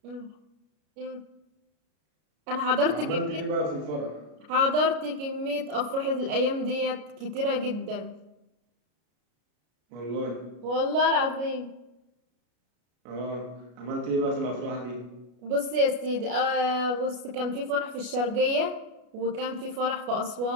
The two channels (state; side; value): late; left; 33 ms